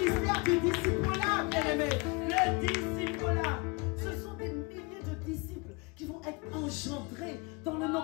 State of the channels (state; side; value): quieter; right; 28.5 dB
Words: du disciple-là, bien-aimé. Le disciple-là. Ce sont des milliers de disciples qui vont être engendrés dans le nom